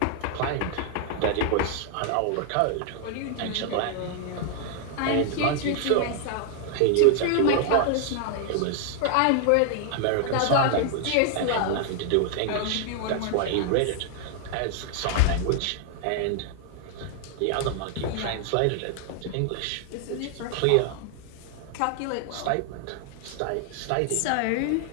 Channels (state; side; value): different; both; correlation 0.00